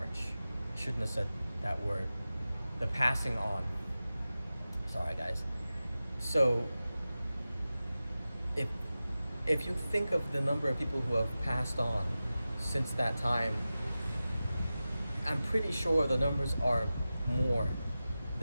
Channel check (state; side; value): inverted; both; correlation -0.95